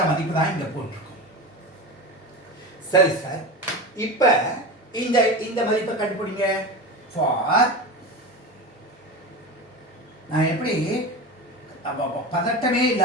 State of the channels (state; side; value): normal; both; correlation 0.26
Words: மதிப்பு தான் இங்க போட்டிருக்கோம். சரி சார், இப்ப இந்த இந்த மதிப்பை கண்டுபிடிங்க. ஃபார் நான் எப்படி பதட்டமே